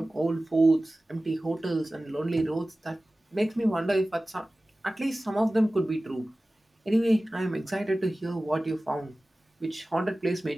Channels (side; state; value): both; normal; correlation 0.97